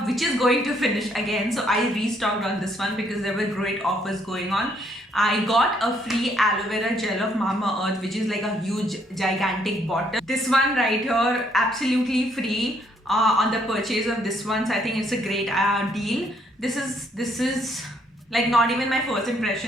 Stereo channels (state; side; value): normal; both; correlation 0.69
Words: which is going to finish again. So I restocked on this one because there were great offers going on. I got a free aloe vera gel of Mamaearth, which is like a huge gigantic bottle. This one right here, absolutely free on the purchase of this one. So I think it's a great deal. This is like not even my first